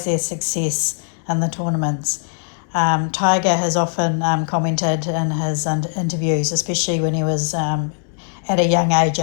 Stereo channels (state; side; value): silent; right; digital silence